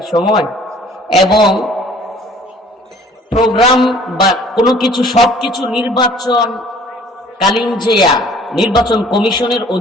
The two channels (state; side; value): normal; both; correlation 0.53